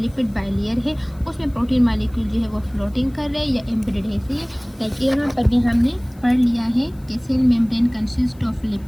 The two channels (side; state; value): left; noise; hiss, 29 dB below the sound